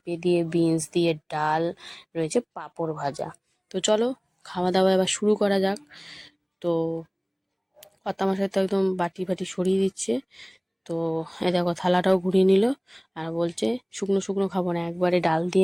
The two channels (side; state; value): both; identical; correlation 1.00